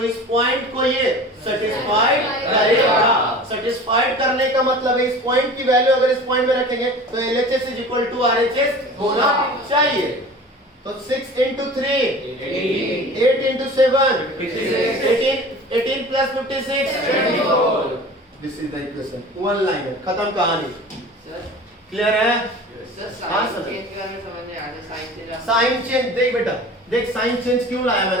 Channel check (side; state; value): both; normal; correlation 0.39